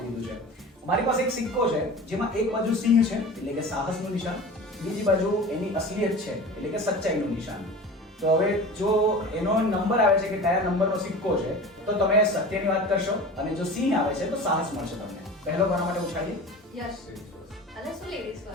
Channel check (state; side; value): normal; both; correlation 0.36